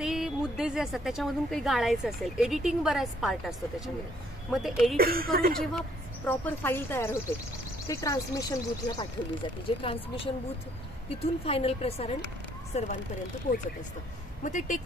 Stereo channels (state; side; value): normal; both; correlation 0.65